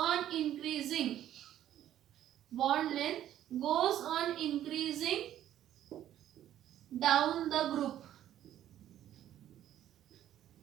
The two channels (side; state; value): left; quieter; 11.8 dB